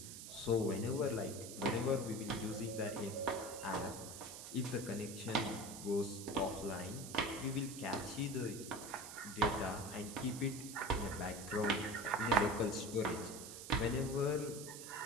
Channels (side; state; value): right; noise; hiss, 10 dB below the sound